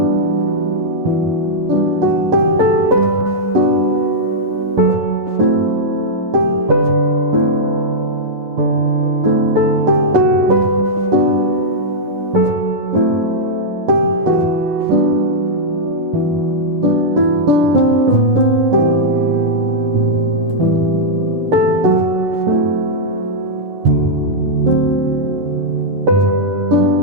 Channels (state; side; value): late; left; 11 ms